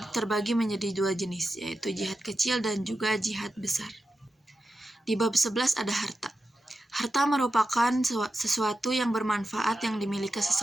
terbagi menjadi dua jenis, yaitu jihad kecil dan juga jihad besar. Di bab 11 ada harta. Harta merupakan sesuatu yang bermanfaat yang dimiliki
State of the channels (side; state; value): both; normal; correlation 0.90